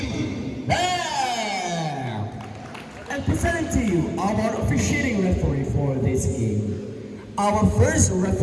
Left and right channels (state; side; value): identical; both; correlation 1.00